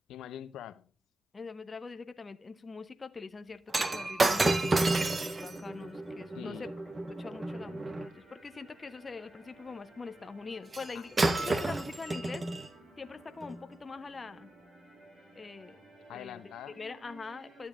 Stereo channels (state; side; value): normal; both; correlation 0.92